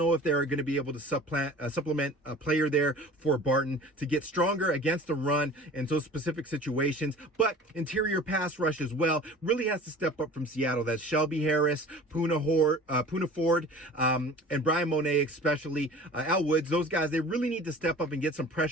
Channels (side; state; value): both; normal; correlation 0.43